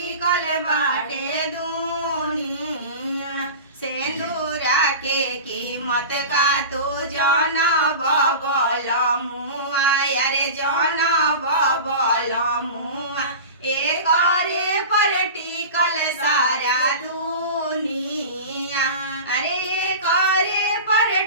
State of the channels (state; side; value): inverted; both; correlation -0.32